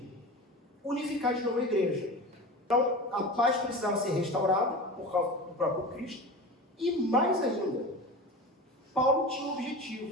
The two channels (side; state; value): both; normal; correlation 0.31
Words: unificar de novo a igreja. Então, a paz precisava ser restaurada por causa do próprio Cristo. E mais ainda, Paulo tinha um